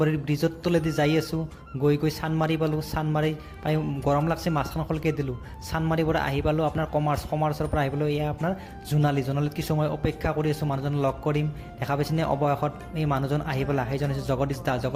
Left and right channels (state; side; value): identical; both; correlation 1.00